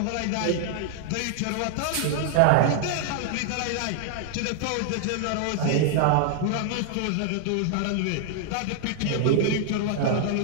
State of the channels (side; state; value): both; different; correlation 0.00